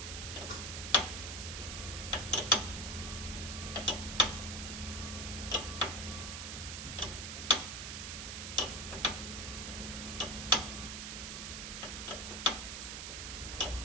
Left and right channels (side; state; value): right; noise; hiss, 5 dB below the sound